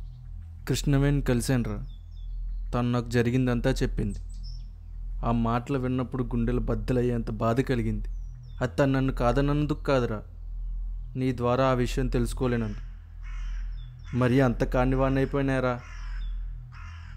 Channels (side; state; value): both; identical; correlation 1.00